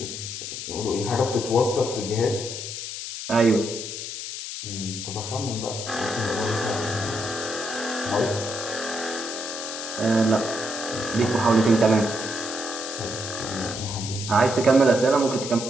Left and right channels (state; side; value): noise; left; hiss, 7 dB below the sound